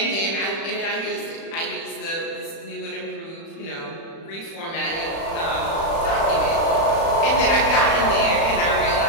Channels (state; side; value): late; right; 36 ms